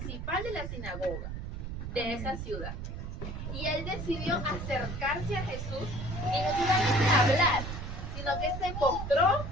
de la sinagoga de esa ciudad. Y él decidió acercarse a Jesús y no solamente hablar, sino que se postró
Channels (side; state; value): right; noise; rumble, 6 dB below the sound